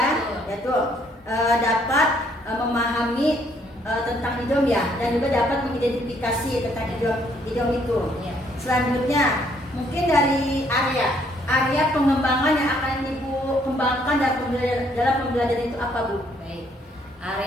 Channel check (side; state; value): both; normal; correlation 0.67